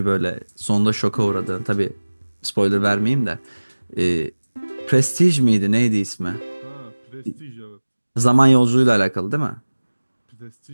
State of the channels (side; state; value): both; inverted; correlation -1.00